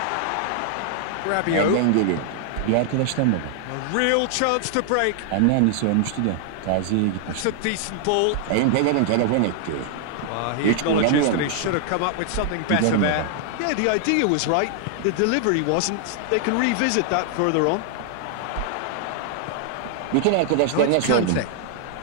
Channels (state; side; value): different; both; correlation 0.00